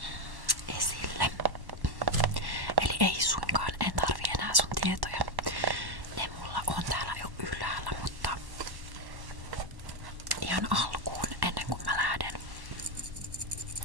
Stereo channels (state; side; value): late; left; 1.1 ms